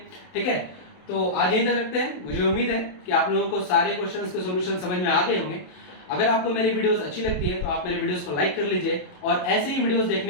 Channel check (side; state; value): right; late; 28 ms